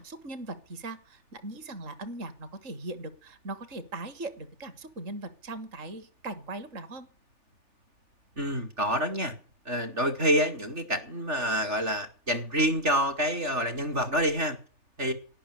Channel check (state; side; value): late; left; 3.4 ms